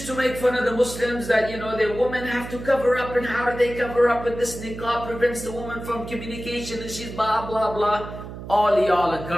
to make fun of the Muslims that, you know, the women have to cover up, and how do they cover up, and this niqab prevents the woman from communication, and she's blah, blah, blah. All y'all are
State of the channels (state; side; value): noise; right; hum, 11 dB below the sound